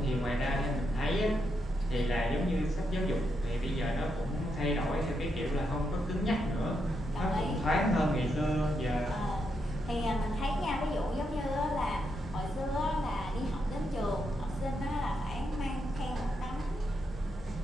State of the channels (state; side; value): normal; both; correlation 0.82